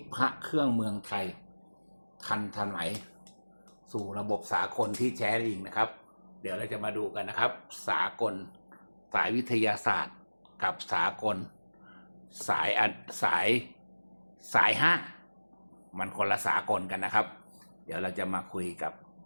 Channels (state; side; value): inverted; both; correlation -1.00